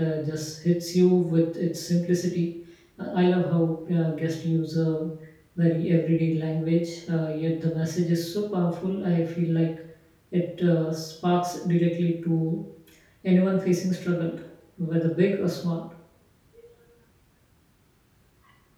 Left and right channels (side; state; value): both; identical; correlation 1.00